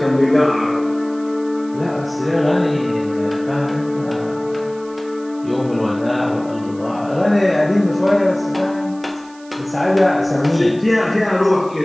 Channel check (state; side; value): noise; right; hiss, 26 dB below the sound